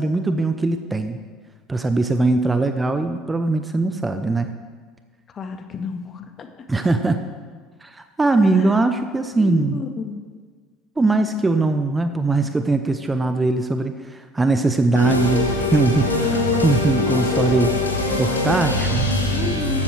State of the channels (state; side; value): normal; both; correlation 0.64